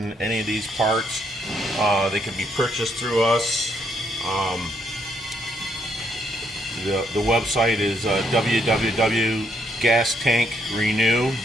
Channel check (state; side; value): normal; both; correlation 0.72